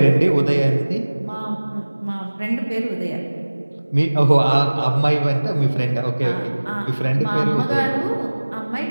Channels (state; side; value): inverted; both; correlation -1.00